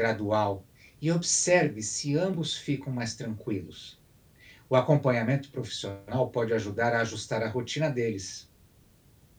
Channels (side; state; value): both; identical; correlation 1.00